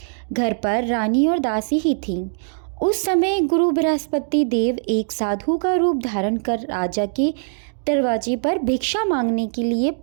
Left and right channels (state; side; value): silent; left; digital silence